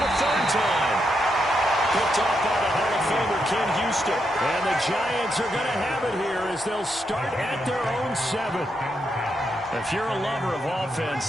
3rd time. Picked off by the Hall of Famer Ken Houston. And the Giants are going to have it here as they'll start at their own 7. If you're a lover of offense,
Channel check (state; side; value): normal; both; correlation 0.81